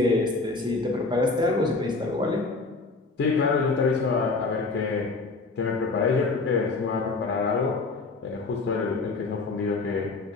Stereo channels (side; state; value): right; quieter; 3.7 dB